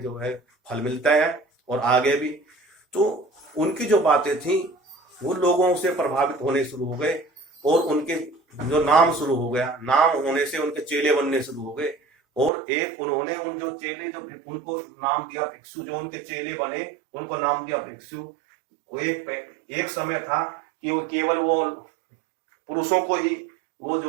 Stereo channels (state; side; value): drops out; left; at 12.5 s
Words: जो है फल मिलता है और आगे भी। तो उनकी जो बातें थी वो लोगों से प्रभावित होने शुरू हो गए, और उनके जो नाम शुरू हो गया, नाम होने से उनके चेले बनने शुरू हो गए। और एक उन्होंने उन जो चेले जो उनको नाम दिया भिक्षु, जो उनके चेले बने उनको नाम दिया भिक्षु। वो एक समय था कि वो केवल वो पुरुषों को ही वो